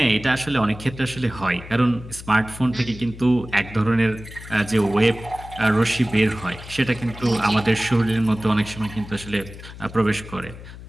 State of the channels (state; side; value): noise; left; hum, 15 dB below the sound